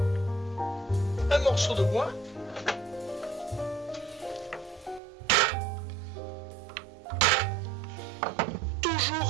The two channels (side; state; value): left; drops out; at 5.0 s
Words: un morceau de bois,